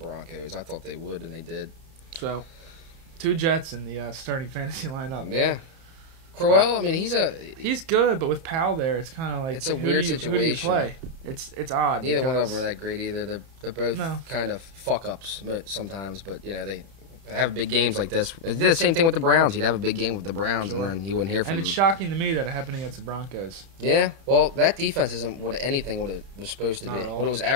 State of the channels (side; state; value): left; late; 30 ms